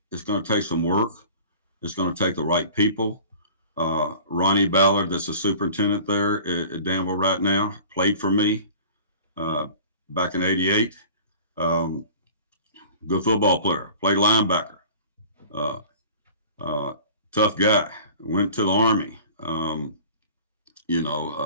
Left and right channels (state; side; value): inverted; both; correlation -0.43